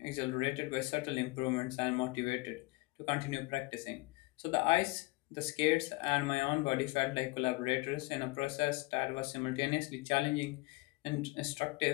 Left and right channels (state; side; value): quieter; right; 24.3 dB